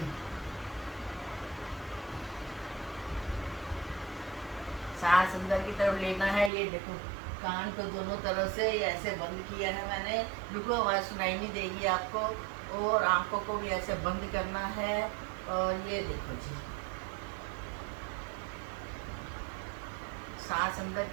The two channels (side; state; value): left; drops out; at 6.5 s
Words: सांस अंदर की तरफ लेना है। ये देखो कान को दोनों तरफ से ऐसे बंद किया है मैंने, रुको आवाज़ सुनाई नहीं देगी आपको। और आंखों को भी ऐसे बंद करना है। और ये देखो जी, सांस अंदर